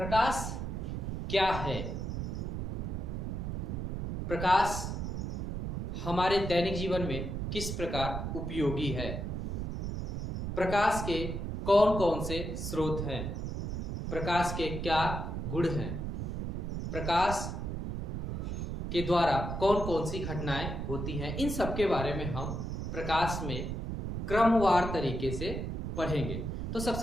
क्या है? प्रकाश हमारे दैनिक जीवन में किस प्रकार उपयोगी है? प्रकाश के कौन कौन से स्रोत हैं? प्रकाश के क्या गुण हैं? प्रकाश के द्वारा कौन कौन सी घटनाएं होती हैं? इन सब के बारे में हम प्रकाश में क्रमवार तरीके से पढ़ेंगे। तो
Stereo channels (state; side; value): noise; right; rumble, 3 dB below the sound